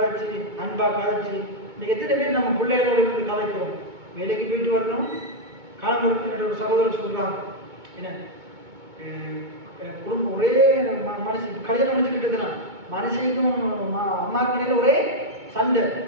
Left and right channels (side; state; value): left; late; 2.2 ms